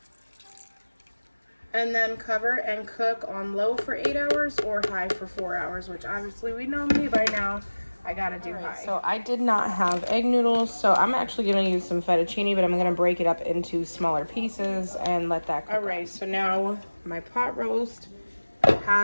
And then cover and cook on low for 8 hours or high for 4 hours, which obviously we know me by now. I gotta do high. So I did not have egg noodles, so I'm actually gonna use some fettuccine, but I'm gonna break it up into smaller pieces and let that cook. All right, so now my pot roast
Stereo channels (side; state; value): both; inverted; correlation -1.00